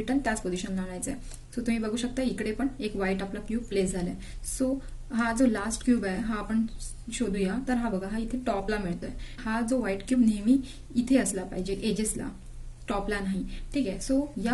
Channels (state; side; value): identical; both; correlation 1.00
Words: त्याच पोझिशनला आणायचं आहे. सो तुम्ही बघू शकता इकडे पण एक व्हाईट आपला क्यूब प्लेस झालाय. सो हा जो लास्ट क्यूब आहे हा आपण शोधूया. तर हा बघा, हा इथे टॉपला मिळतोय. हा जो व्हाईट क्यूब नेहमी इथे असला पाहिजे, एजेसला, टॉपला नाही. ठीक आहे, सो या